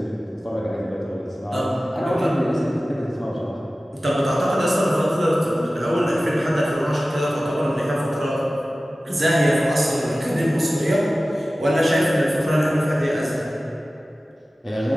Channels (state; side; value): normal; both; correlation 0.96